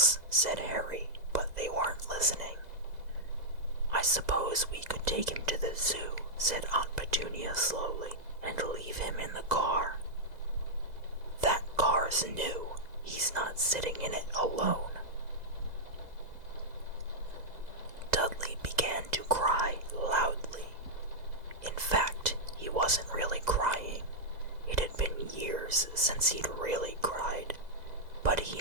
said Harry, but they weren't listening. "I suppose we could take him to the zoo," said Aunt Petunia slowly, "and leave him in the car." "That car's new. He's not sitting in it alone." Dudley began to cry loudly. In fact, he wasn't really crying. It had been years since he'd really cried, but he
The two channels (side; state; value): left; late; 2.0 ms